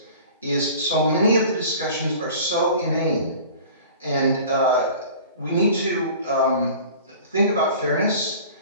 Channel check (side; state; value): both; inverted; correlation -0.43